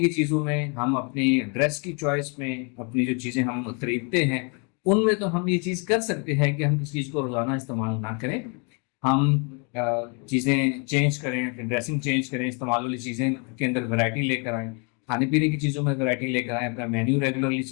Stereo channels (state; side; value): quieter; right; 35.4 dB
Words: چیزوں میں، ہم اپنی ڈریس کی چوائس میں، اپنی جو چیزیں ہم خریدتے ہیں ان میں تو ہم یہ چیز کر سکتے ہیں کہ ہم کسی چیز کو روزانہ استعمال نہ کریں، ہم چیزیں چینج کریں، ڈریسنگ چینج کریں، استعمال والی چیزیں کے اندر ویرائٹی لے کر آئیں، کھانے پینے کی چیزوں میں ویرائٹی لے کر آئیں، اپنا مینیو ریگولرلی